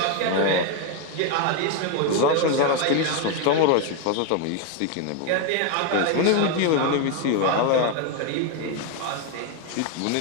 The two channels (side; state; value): both; different; correlation 0.01